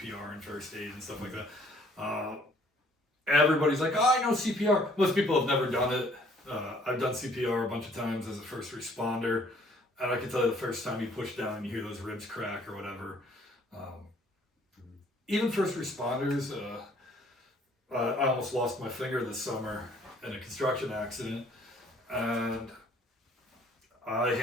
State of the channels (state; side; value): normal; both; correlation 0.59